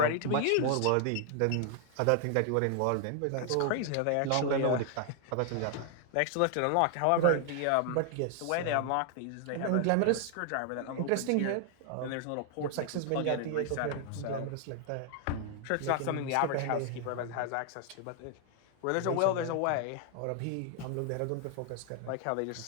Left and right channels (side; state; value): both; different; correlation 0.00